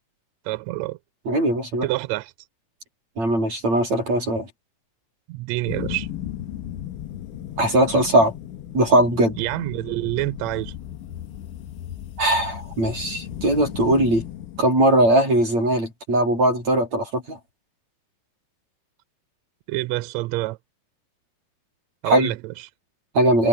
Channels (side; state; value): left; late; 8.8 ms